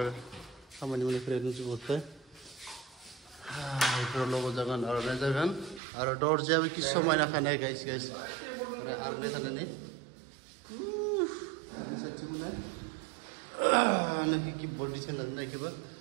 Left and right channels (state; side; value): drops out; left; at 5.8 s